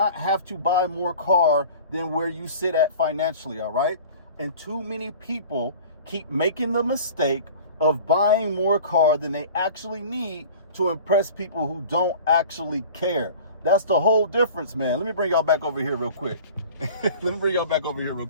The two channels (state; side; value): inverted; both; correlation -0.41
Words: have to buy more car than where you sit at financially, all right? And too many people keep making the mistake of buying more car than they actually need to impress people who don't actually care. That's the whole difference, man. Let me bring y'all back over here real quick.